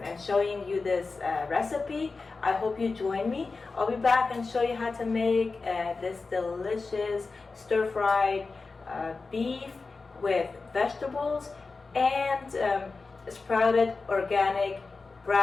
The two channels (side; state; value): right; quieter; 4.1 dB